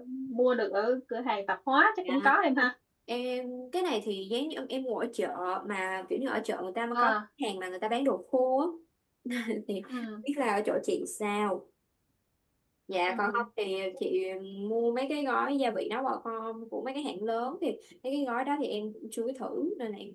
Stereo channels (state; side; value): identical; both; correlation 1.00